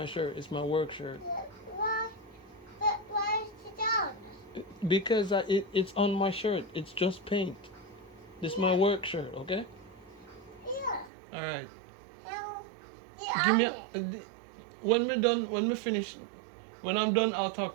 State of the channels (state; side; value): drops out; left; at 11.1 s